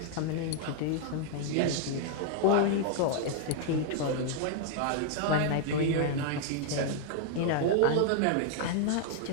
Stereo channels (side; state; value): both; different; correlation 0.00